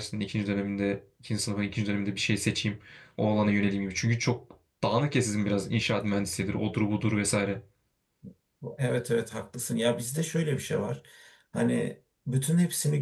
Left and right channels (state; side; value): identical; both; correlation 1.00